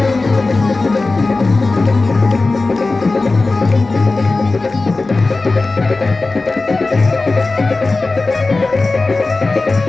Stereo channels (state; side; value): quieter; right; 3.5 dB